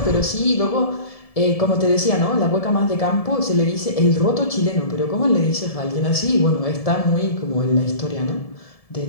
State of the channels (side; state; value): right; late; 1.7 ms